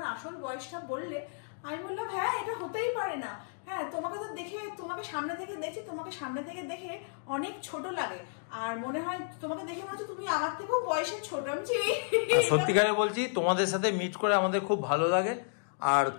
আসল বয়সটা বললে, আমি বললাম হ্যাঁ এটা হতেই পারে না। হ্যাঁ, তোমাকে তো দেখে, তোমাকে সামনে থেকে দেখছি, তোমাকে সামনে থেকে দেখে অনেক ছোট লাগে, আর মনে হয় তোমাকে দেখে মনে হচ্ছে তুমি আমার থেকেও বয়সে ছোট। আমি সত্যিকারে বলছি, তোমাদের সাথে মিট করে আমাদের খুব ভালো লাগে। আর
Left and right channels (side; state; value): right; silent; digital silence